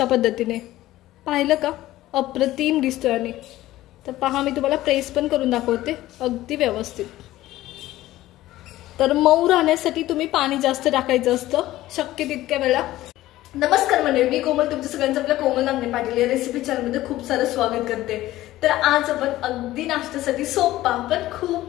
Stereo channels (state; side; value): quieter; right; 15.7 dB